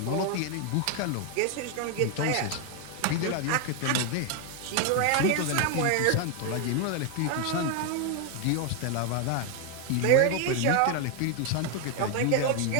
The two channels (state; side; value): different; both; correlation 0.01